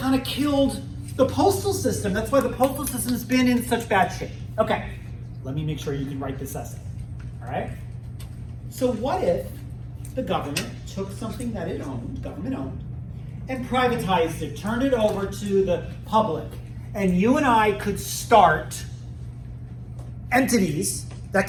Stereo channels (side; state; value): both; identical; correlation 1.00